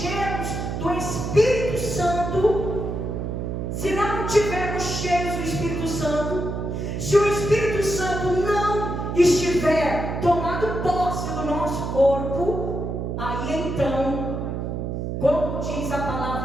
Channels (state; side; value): noise; right; hum, 3 dB below the sound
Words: do Espírito Santo, se não estivermos cheios do Espírito Santo, se o Espírito Santo não estiver tomando posse do nosso corpo, aí então, como diz a